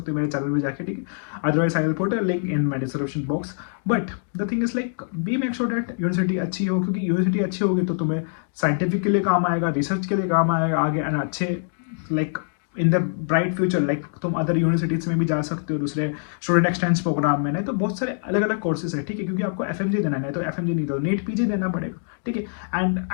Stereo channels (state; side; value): silent; right; digital silence